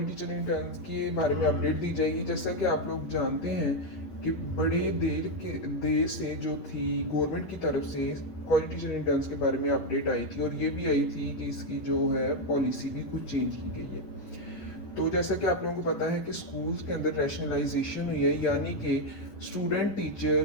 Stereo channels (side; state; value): right; late; 10 ms